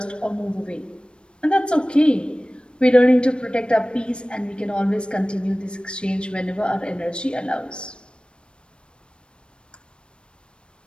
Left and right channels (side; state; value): right; late; 0.056 ms